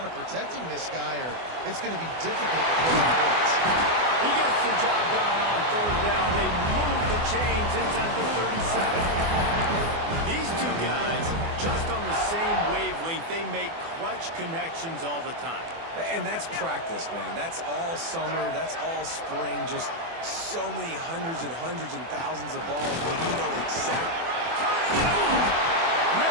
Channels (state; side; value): late; left; 24 ms